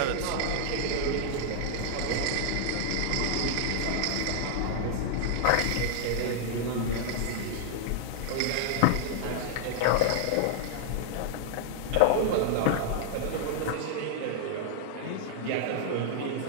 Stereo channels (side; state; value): both; different; correlation -0.01